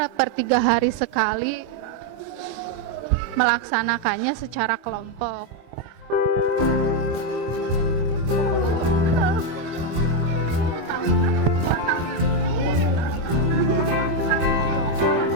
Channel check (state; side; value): late; left; 25 ms